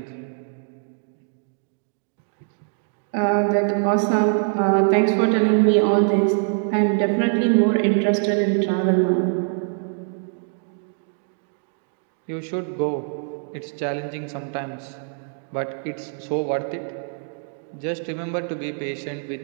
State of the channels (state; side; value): silent; left; 63 dB below the other